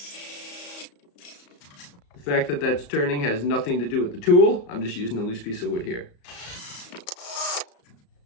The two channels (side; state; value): right; late; 34 ms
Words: The fact that that's turning has nothing to do with the tool. I'm just using a loose piece of wood here.